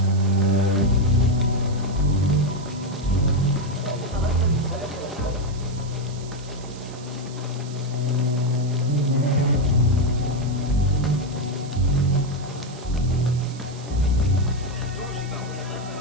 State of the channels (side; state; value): right; noise; hiss, 19 dB below the sound